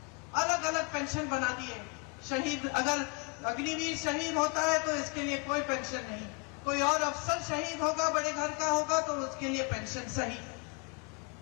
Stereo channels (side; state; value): right; quieter; 32.9 dB